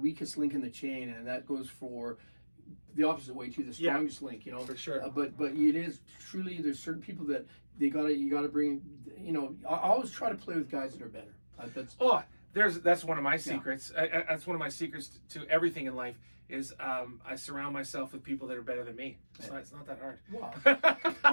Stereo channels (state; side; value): inverted; both; correlation -1.00